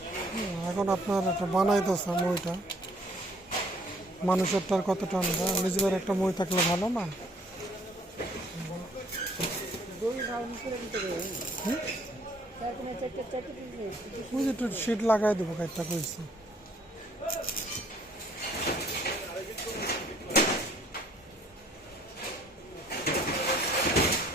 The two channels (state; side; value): normal; both; correlation 0.61